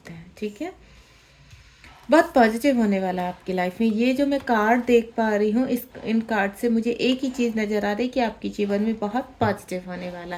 हैं। ठीक है, बहुत पॉजिटिव होने वाला है आपकी लाइफ में। ये जो मैं कार्ड देख पा रही हूँ, इस इन कार्ड से मुझे एक ही चीज़ नज़र आ रही है कि आपके जीवन में बहुत पॉजिटिव होने वाला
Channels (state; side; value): identical; both; correlation 1.00